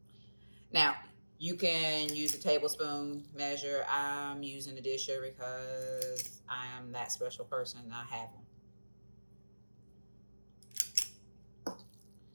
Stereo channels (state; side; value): inverted; both; correlation -1.00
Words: Now, you can use a tablespoon measure. I'm using a disher because I am that special person. I have them.